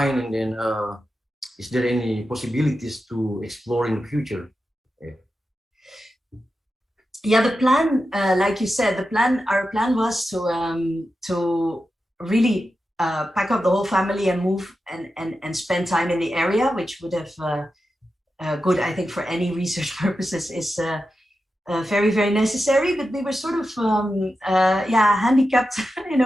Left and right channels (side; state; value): both; normal; correlation 0.90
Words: and then is there any possibilities to explore in the future? Yeah, the plan, like you said, our plan was to really pack up the whole family and move and spend time in the area, which would have good, I think, for any research purposes is very, very necessary. But we were sort of handicapped in